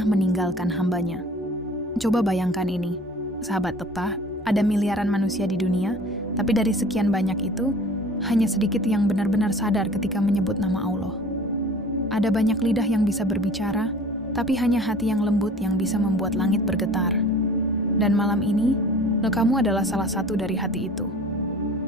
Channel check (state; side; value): normal; both; correlation 0.46